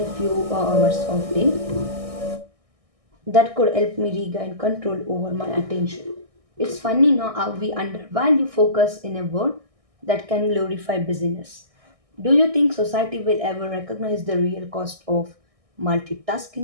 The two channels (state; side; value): late; left; 1.6 ms